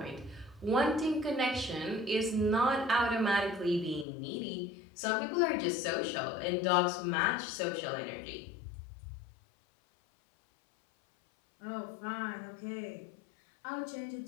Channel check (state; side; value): drops out; right; at 4.0 s